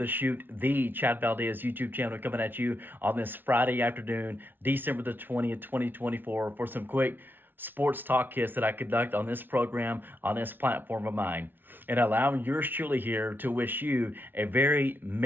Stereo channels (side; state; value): left; late; 0.095 ms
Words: chute, the Chad Valdez YouTube channel coming at you on this Friday afternoon, December the 20th, 2024, for some quick sports talk hits that I conduct on this program, on this platform of mine. And allowing yours truly here to wish you a very